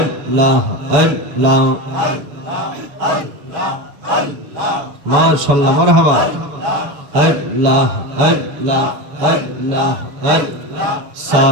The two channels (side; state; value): left; late; 7.1 ms